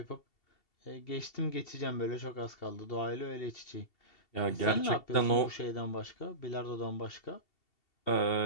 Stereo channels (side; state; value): right; late; 2.7 ms